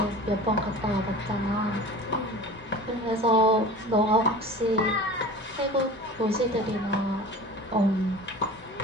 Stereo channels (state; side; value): normal; both; correlation 0.38